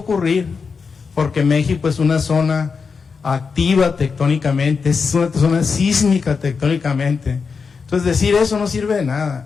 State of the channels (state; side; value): quieter; right; 5.3 dB